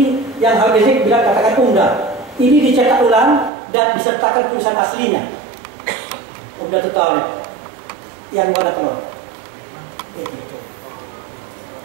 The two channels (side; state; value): left; drops out; at 3.5 s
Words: yang Habib Rizik bilang katakan Umdah. Ini dicetak ulang dan disertakan tulisan aslinya. Udah total yang warna telur.